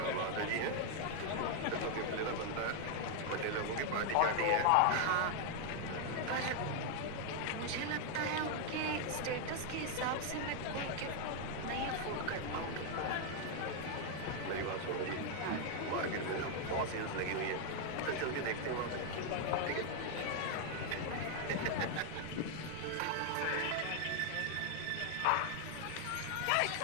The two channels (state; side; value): different; both; correlation 0.00